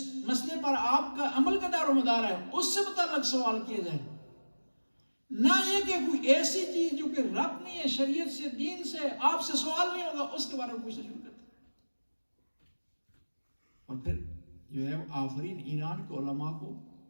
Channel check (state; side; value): inverted; both; correlation -1.00